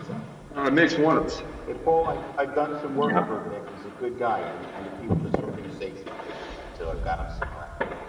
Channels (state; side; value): identical; both; correlation 1.00